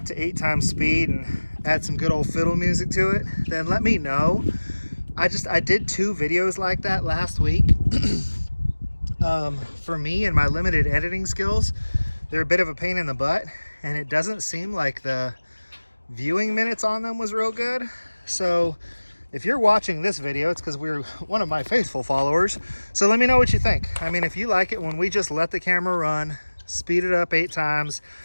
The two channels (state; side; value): inverted; both; correlation -1.00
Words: to 8 times speed and add some good old fiddle music to it, then let me know. I did 2 videos like that last week. For me and my limited editing skills, they're a bit of a pain in the butt, and it doesn't seem like the viewing minutes on them was real good. So if you're watching this video, it's because we're one of my faithful followers. So let me know what you think. I mean, if you like it when we just let the camera run, speed it up 8 times,